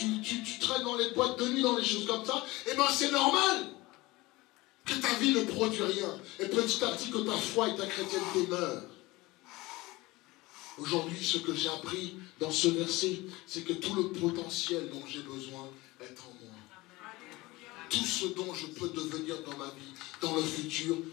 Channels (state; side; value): quieter; right; 21.0 dB